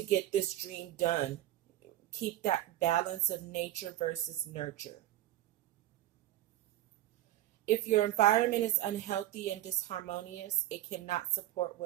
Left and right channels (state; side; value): quieter; left; 13.9 dB